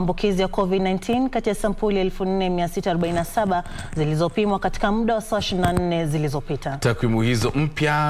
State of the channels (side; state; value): both; identical; correlation 1.00